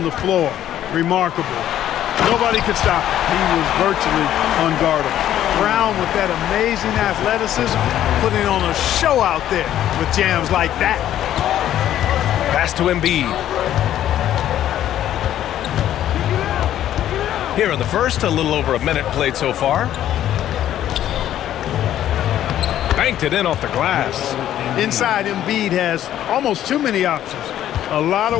the floor. Remarkable. Nobody could stop him. He was virtually unguardable. Brown with that amazing athleticism, putting on a show out there with jams like that. Pass to Embiid. Here in the first, a little over a minute played so far. Banked it in off the glass. Inside, Embiid has almost too many options. A lot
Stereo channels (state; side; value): quieter; right; 11.8 dB